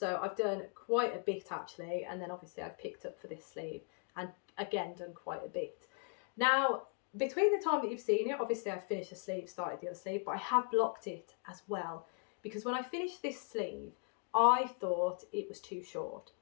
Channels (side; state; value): right; quieter; 38.9 dB